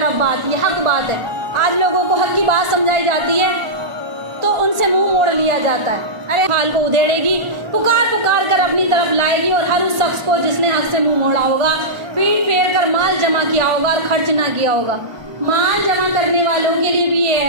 بات، یہ حق بات ہے۔ آج لوگوں کو حق کی بات سمجھائی جاتی ہے تو ان سے منہ موڑ لیا جاتا ہے۔ ارے حال کو ادھیڑے گی، پکار پکار کر اپنی طرف لائے گی، اور ہر اس شخص کو جس نے حق سے منہ موڑا ہوگا، پیٹ پھیر کر مال جمع کیا ہوگا اور خرچ نہ کیا ہوگا۔ مال جمع کرنے والوں کے لیے بھی یہ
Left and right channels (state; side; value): late; left; 1.4 ms